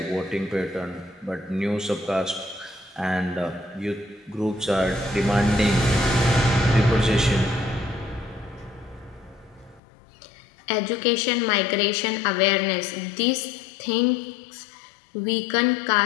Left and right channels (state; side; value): drops out; right; at 9.8 s